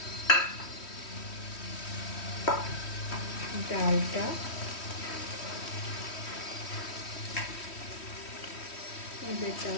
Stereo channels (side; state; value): right; late; 3.1 ms